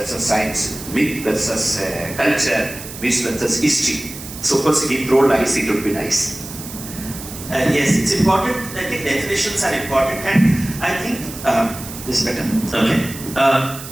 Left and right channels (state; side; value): noise; right; hiss, 12 dB below the sound